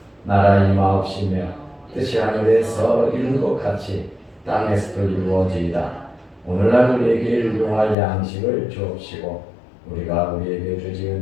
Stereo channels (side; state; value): right; drops out; at 8.0 s